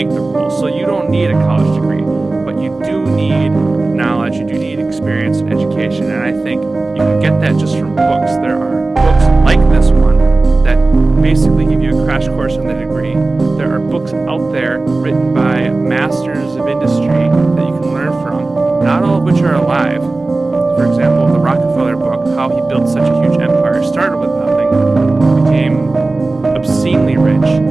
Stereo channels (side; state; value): left; quieter; 3.3 dB